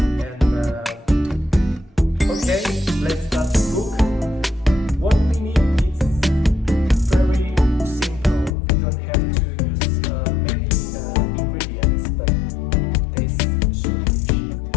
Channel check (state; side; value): drops out; right; at 8.5 s